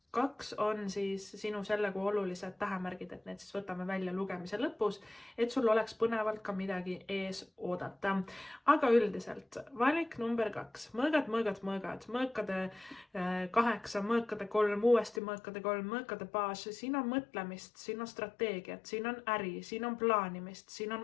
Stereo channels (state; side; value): drops out; right; at 15.2 s